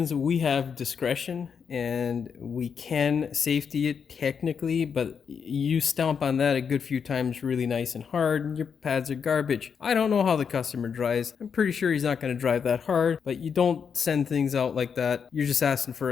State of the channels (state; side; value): quieter; right; 6.6 dB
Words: we have discretion and we can safety it technically, but you stomp on that a good few times really nice and hard and your pads are garbage. I don't know how the customer drives. I'm pretty sure he's not going to drive that hard, but you don't send things out like that. You're just asking for